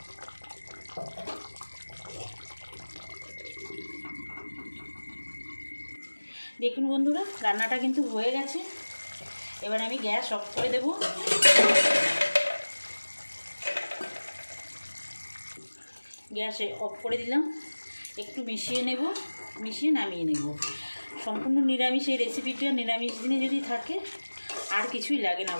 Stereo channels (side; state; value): both; inverted; correlation -1.00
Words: দেখুন বন্ধুরা রান্নাটা কিন্তু হয়ে গেছে। এবার আমি গ্যাস অফ করে দেব। গ্যাস অফ করে দিলাম, একটু মিশিয়ে নেব, মিশিয়ে নামিয়ে নেব। সম্পূর্ণ নিরামিষ এই রেসিপিটা, নিরামিষ দিনে যদি থাকে আর কিছুই লাগে না,